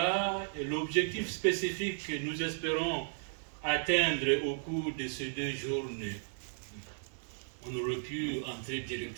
et l'objectif spécifique que nous espérons atteindre au cours de ces 2 journées. On aurait pu entrer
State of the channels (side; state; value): left; silent; digital silence